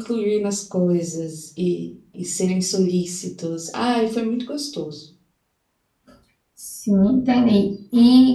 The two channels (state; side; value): identical; both; correlation 1.00